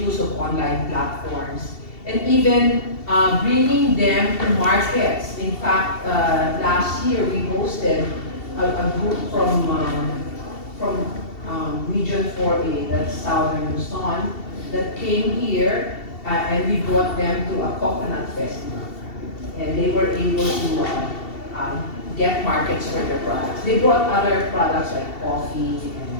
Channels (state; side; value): late; right; 2.7 ms